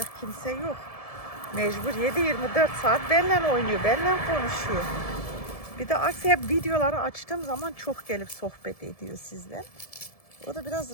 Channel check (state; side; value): late; right; 1.7 ms